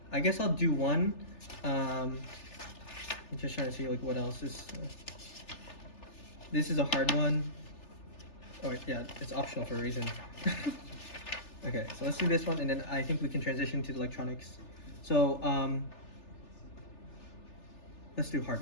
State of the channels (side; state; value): right; late; 3.4 ms